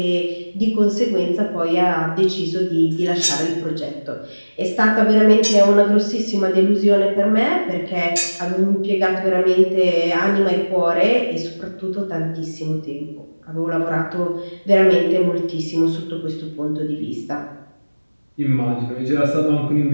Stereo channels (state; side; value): inverted; both; correlation -1.00